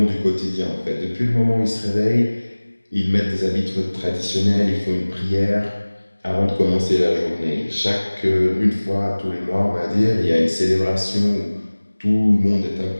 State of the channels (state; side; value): inverted; both; correlation -1.00